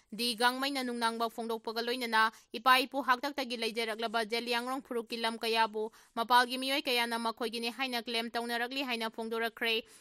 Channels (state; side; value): identical; both; correlation 1.00